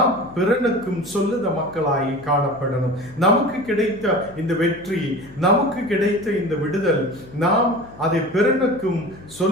பிறனுக்கும் சொல்லுத மக்களாய் காணப்படணும். நமக்கு கிடைத்த இந்த வெற்றி, நமக்கு கிடைத்த இந்த விடுதல், நாம் அதை பிறனுக்கும்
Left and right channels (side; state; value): left; noise; hum, 21 dB below the sound